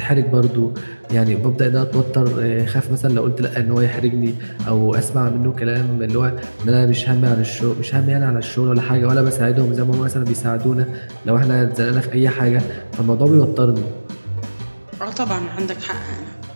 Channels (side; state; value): both; inverted; correlation -1.00